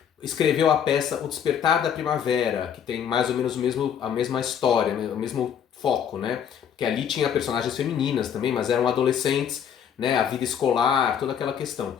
escreveu a peça O Despertar da Primavera, que tem mais ou menos a mesma história, o mesmo foco, né? Que ali tinha personagens femininas também, mas eram adolescentes, né? A vida escolar, toda aquela questão.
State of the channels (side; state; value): right; quieter; 8.4 dB